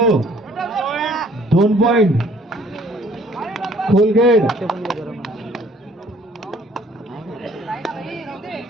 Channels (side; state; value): both; normal; correlation 0.58